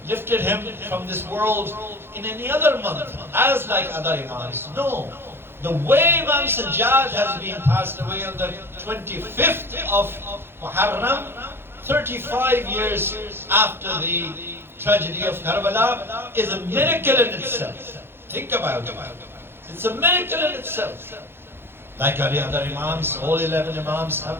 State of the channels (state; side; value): late; left; 0.11 ms